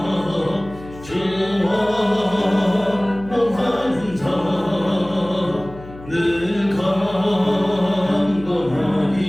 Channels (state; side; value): noise; left; hum, 17 dB below the sound